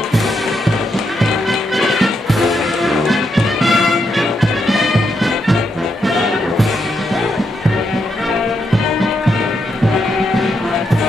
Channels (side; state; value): both; normal; correlation 0.81